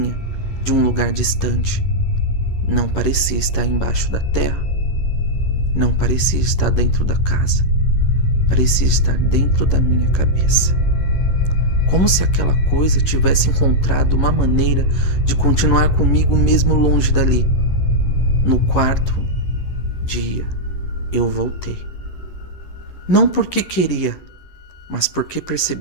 de um lugar distante. Não parecia estar embaixo da terra, não parecia estar dentro da casa, parecia estar dentro da minha cabeça. Como se aquela coisa tivesse encontrado uma maneira de continuar comigo mesmo longe dali. No 4º dia, eu voltei. Não porque queria, mas porque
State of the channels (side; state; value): right; late; 11 ms